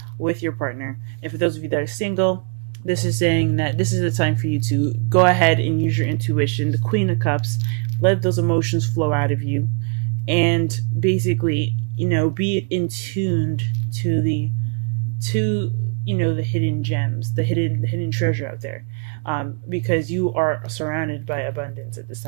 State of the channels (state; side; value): quieter; left; 38.2 dB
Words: with your partner. And for those of you that are single, this is saying that this is the time for you to go ahead and use your intuition, the Queen of Cups, let those emotions flow out of you, and basically, be in tuned to the hidden gems, the hidden treasure out there, because you are surrounded by abundance at this